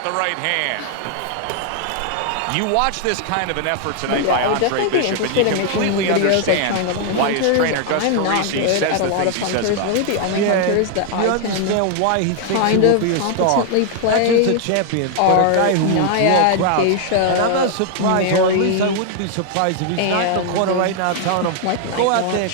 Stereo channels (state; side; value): different; both; correlation 0.00